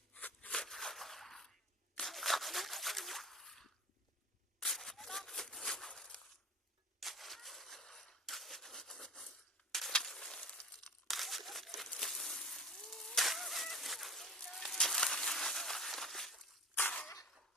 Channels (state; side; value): normal; both; correlation 0.37